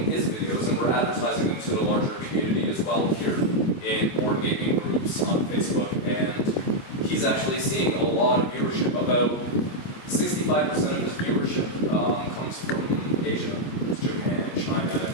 his videos and we're advertising them to the larger community as well here in board gaming groups on Facebook. And he's actually seeing a lot of viewership. About 65% of his viewership comes from Asia. It's Japan, China,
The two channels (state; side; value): late; right; 25 ms